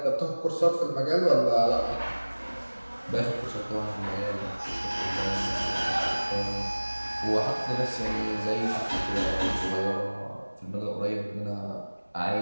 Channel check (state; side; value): inverted; both; correlation -1.00